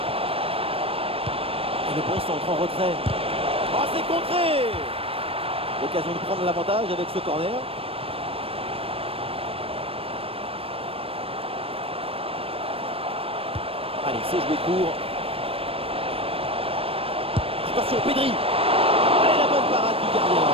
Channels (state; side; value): late; left; 0.28 ms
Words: Le bon centre en retrait. Oh, c'est contré. L'occasion de prendre l'avantage avec ce corner. Allez, c'est joué court. Attention, Pedri. Allez, la bonne parade du gardien.